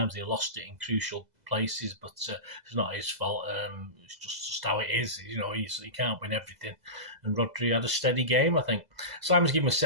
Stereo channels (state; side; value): late; left; 2.0 ms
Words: He lost it in crucial places, but it's not his fault. It's just how it is. He can't win everything. And Rodri had a steady game, I think. Simon's given him a